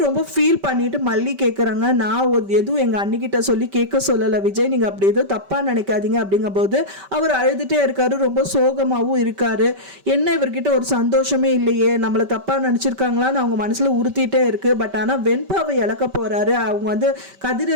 ரொம்ப ஃபீல் பண்ணிட்டு மல்லி கேட்குறாங்க, நான் எதுவும் எங்கள் அண்ணிக்கிட்ட சொல்லி கேட்க சொல்லலை விஜய், நீங்கள் அப்படி எதுவும் தப்பாக நினைக்காதீங்க அப்படிங்கும்போது அவர் அழுதுகிட்டே இருக்காரு. ரொம்ப சோகமாகவும் இருக்காரு. என்ன இவர்கிட்ட ஒரு சந்தோஷமே இல்லையே, நம்மளை தப்பாக நினச்சிருக்காங்களான்னு அவங்க மனசில் உறுத்திட்டே இருக்கு. பட் ஆனால் வெண்பாவை இழக்க போகிறாரு, அவங்க வந்து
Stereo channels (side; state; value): left; late; 5.2 ms